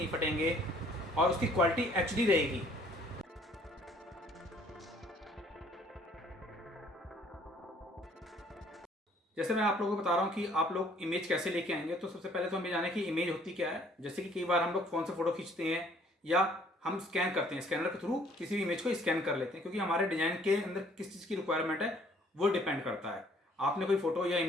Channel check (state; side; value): normal; both; correlation 0.60